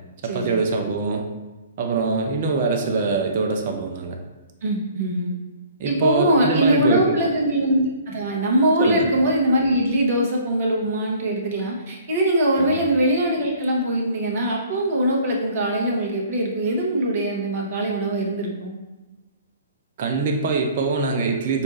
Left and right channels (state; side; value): inverted; both; correlation -0.53